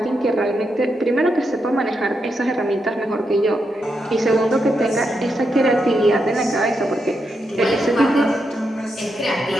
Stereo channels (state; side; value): normal; both; correlation 0.84